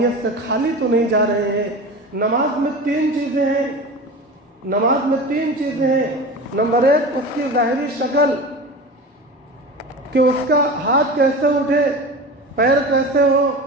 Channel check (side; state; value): both; normal; correlation 0.31